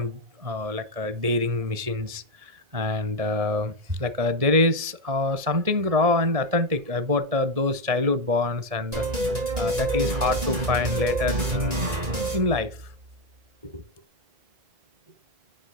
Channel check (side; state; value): left; late; 1.7 ms